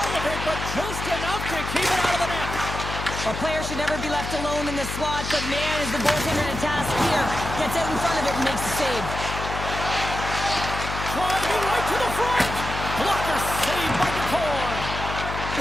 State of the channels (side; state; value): left; noise; hum, 6 dB below the sound